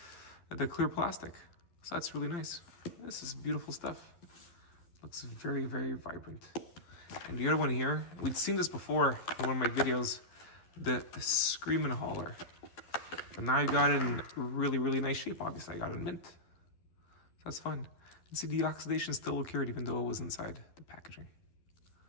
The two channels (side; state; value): right; late; 12 ms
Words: clear plastic. So that's really nice. This is beautiful stuff. Looks very, very vibrant. And the other one here, we'd seen this before in one of my videos, the Screamin' Hauler. But now I got it in really, really nice shape. Obviously, I got it in mint. So that's fun. And see, the oxidation still occurred even though it was inside the packaging.